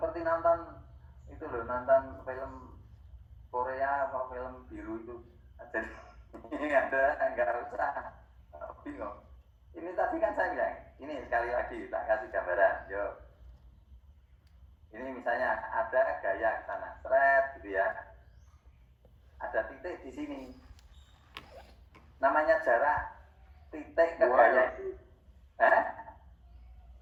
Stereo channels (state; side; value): identical; both; correlation 1.00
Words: nonton itu loh, nonton film Korea apa film biru itu. Jadi ini ada nggak usah bingung. Ini tadi kan saya bilang, ini sekali lagi tak kasih gambaran, yuk. Ini misalnya ada gaya ke sana, thread gitu ya. Ada titik di sini. Namanya jarak titik ke gaya itu.